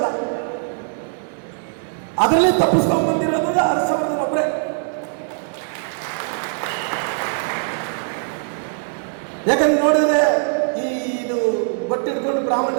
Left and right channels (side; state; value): left; silent; digital silence